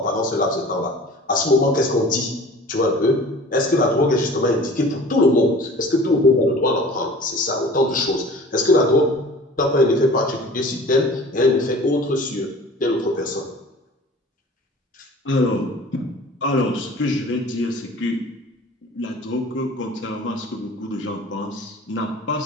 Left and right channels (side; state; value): both; normal; correlation 0.44